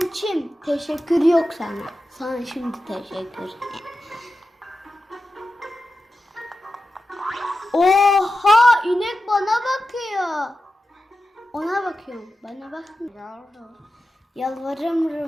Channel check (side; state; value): both; normal; correlation 0.91